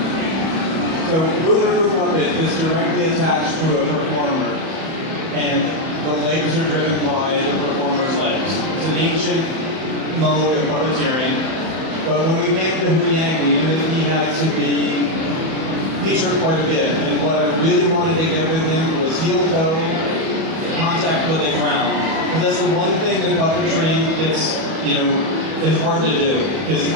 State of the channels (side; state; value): left; late; 31 ms